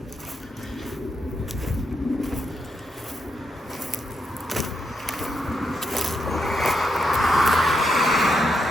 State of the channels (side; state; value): both; normal; correlation 0.81